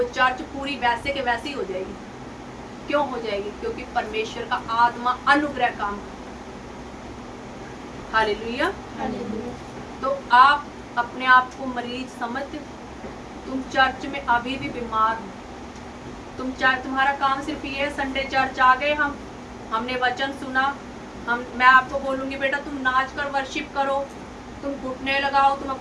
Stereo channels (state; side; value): identical; both; correlation 1.00